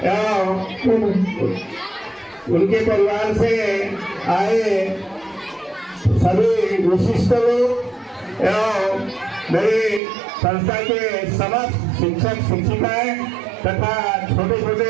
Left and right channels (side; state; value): left; drops out; at 10.0 s